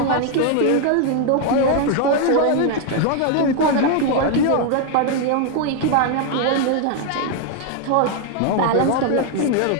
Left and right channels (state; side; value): different; both; correlation 0.00